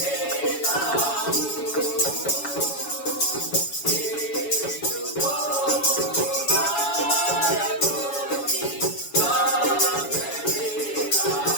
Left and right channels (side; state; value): right; late; 7.1 ms